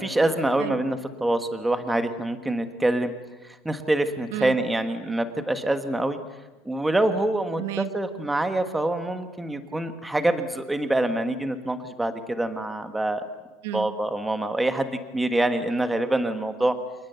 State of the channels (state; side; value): normal; both; correlation 0.87